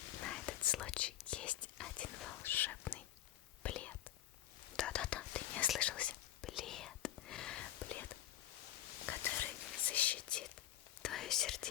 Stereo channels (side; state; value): right; quieter; 13.1 dB